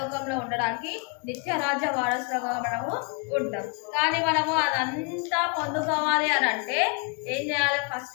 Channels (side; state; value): right; quieter; 33.9 dB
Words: ఉండడానికి నిత్యరాజ్య వారసులుగా మనము ఉంటాం. కానీ మనము అదంతా పొందుకోవాలి అని అంటే ఏం చేయాలి?